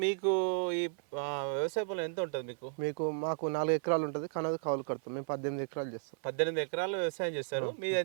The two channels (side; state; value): left; silent; 55 dB below the other